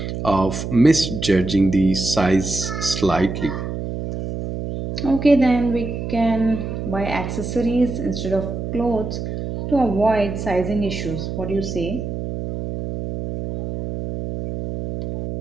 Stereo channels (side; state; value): right; noise; hum, 5 dB below the sound